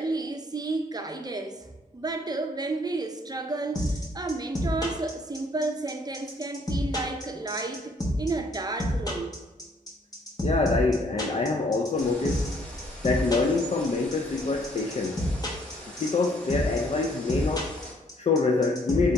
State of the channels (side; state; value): both; normal; correlation 0.64